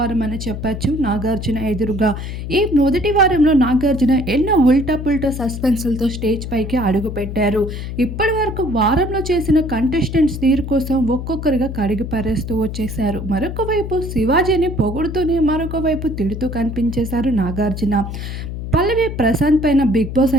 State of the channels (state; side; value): noise; left; hum, 7 dB below the sound